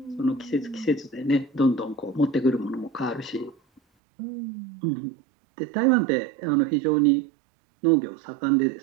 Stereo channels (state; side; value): drops out; left; at 3.8 s